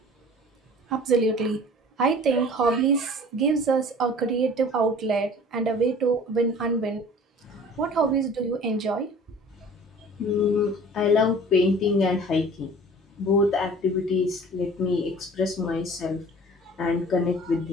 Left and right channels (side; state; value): both; normal; correlation 0.46